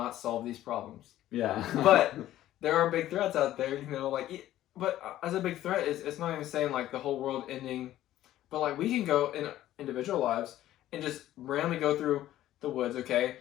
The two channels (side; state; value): right; quieter; 13.6 dB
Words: solve these problems. yeah, But there are big threats out there. You know, like but as a big threat, it's not even saying like the whole world ending, but like we can go in individual lives and just randomly go through the woods. Okay,